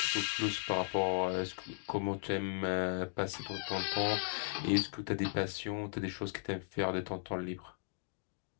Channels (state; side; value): silent; right; digital silence